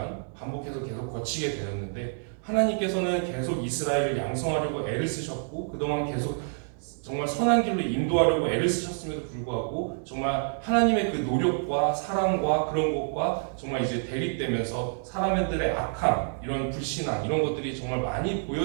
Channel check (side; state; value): left; silent; digital silence